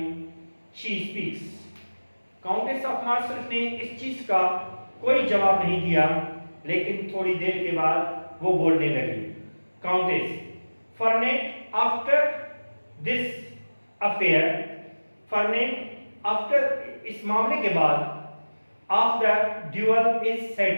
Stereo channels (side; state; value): both; inverted; correlation -1.00